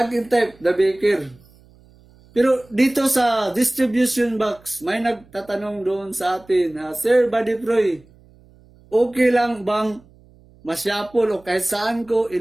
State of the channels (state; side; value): noise; right; hum, 28 dB below the sound